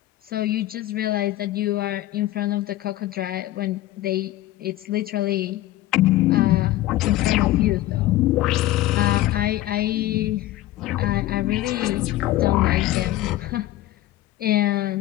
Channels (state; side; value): quieter; right; 15.5 dB